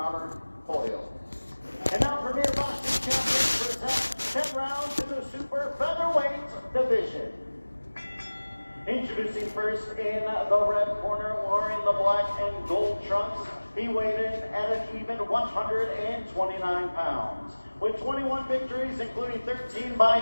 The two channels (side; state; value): both; inverted; correlation -1.00